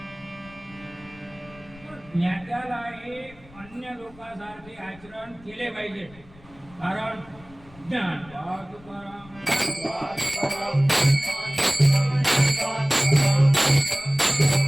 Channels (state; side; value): noise; left; rumble, 23 dB below the sound